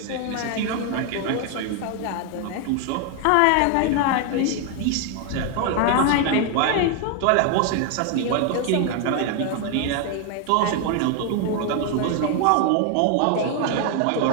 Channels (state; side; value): different; both; correlation 0.01